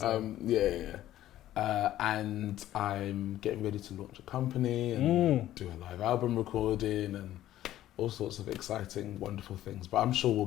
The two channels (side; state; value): right; quieter; 13.4 dB